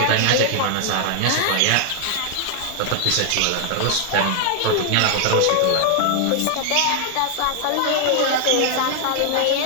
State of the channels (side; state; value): both; different; correlation 0.00